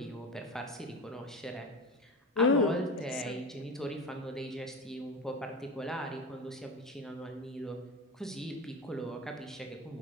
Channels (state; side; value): normal; both; correlation 0.26